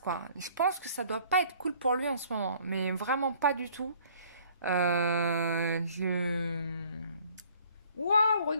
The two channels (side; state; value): both; inverted; correlation -0.56